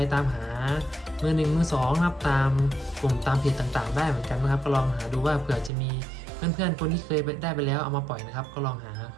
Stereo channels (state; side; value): drops out; left; at 5.7 s